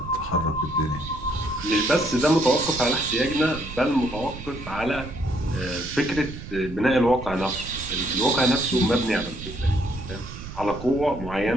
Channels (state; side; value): noise; right; rumble, 12 dB below the sound